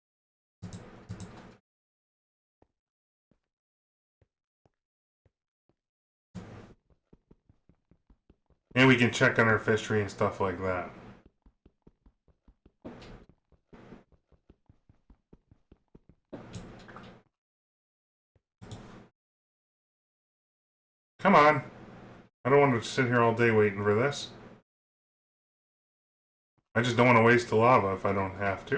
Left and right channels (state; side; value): identical; both; correlation 1.00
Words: And we can check on our fishery and stuff like that. Come on. I don't want to sit here all day waiting for this. I just don't want to waste the lava if I don't have